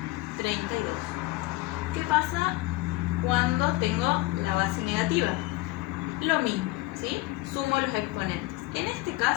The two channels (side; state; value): right; quieter; 19.7 dB